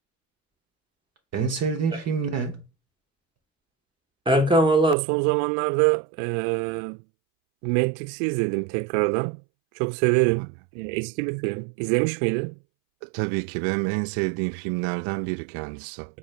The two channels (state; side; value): drops out; left; at 5.0 s